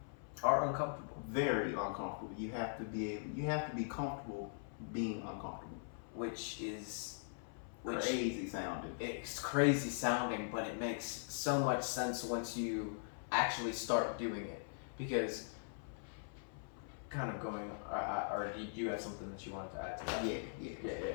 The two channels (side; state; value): right; silent; 50 dB below the other